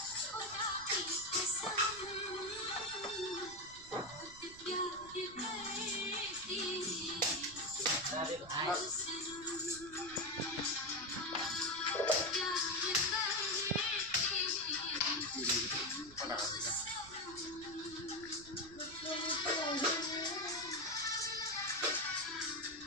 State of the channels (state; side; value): noise; right; rumble, 20 dB below the sound